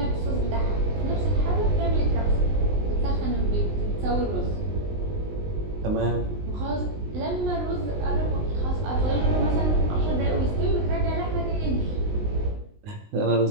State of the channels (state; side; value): late; left; 19 ms